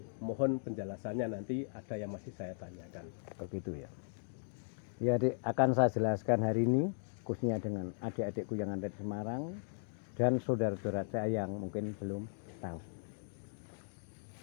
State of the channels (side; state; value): right; silent; digital silence